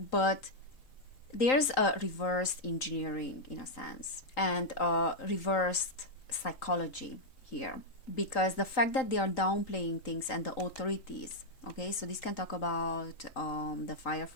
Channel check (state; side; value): late; right; 3.9 ms